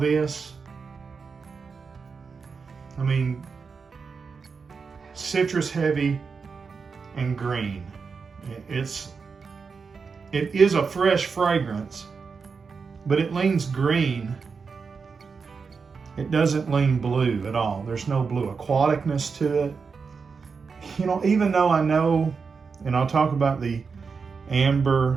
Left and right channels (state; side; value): quieter; left; 5.2 dB